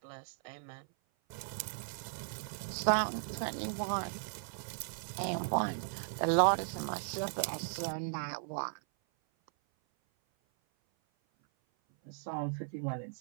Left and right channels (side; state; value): left; silent; 53 dB below the other